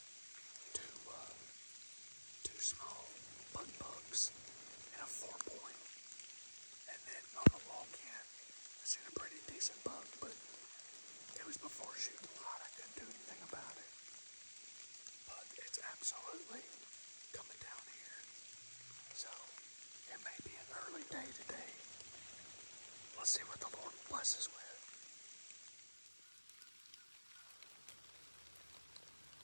Two small bugs and a 4-point. And then on the walk-in, I seen a pretty decent bug, but it was before shooting light. I couldn't do anything about it. But it's absolutely coming down here. So it may be an early day today. Let's see what the Lord blesses with.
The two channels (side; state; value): both; inverted; correlation -1.00